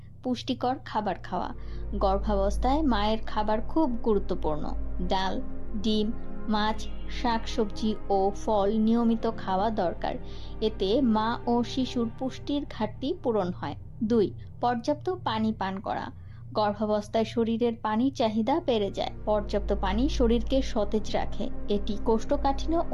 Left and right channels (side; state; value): both; identical; correlation 1.00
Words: পুষ্টিকর খাবার খাওয়া। গর্ভাবস্থায় মায়ের খাবার খুব গুরুত্বপূর্ণ। ডাল, ডিম, মাছ, শাকসবজি ও ফল নিয়মিত খাওয়া দরকার। এতে মা ও শিশুর পুষ্টির ঘাটতি পূরণ হয়। 2. পর্যাপ্ত পানি পান করা। গর্ভাবস্থায় শরীরের পানির চাহিদা বেড়ে যায়। পর্যাপ্ত পানি শরীরকে সতেজ রাখে। এটি কোষ্ঠকাঠিন্য